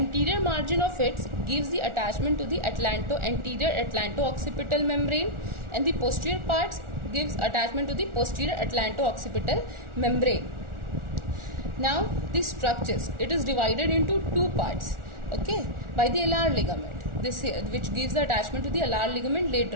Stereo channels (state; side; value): late; left; 1.4 ms